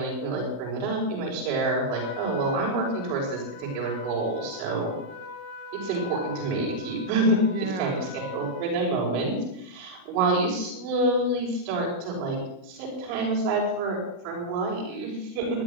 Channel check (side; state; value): left; late; 16 ms